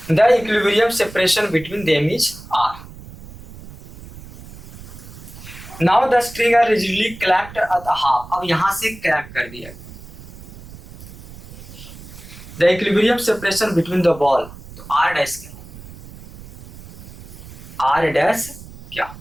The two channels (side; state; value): right; noise; rumble, 16 dB below the sound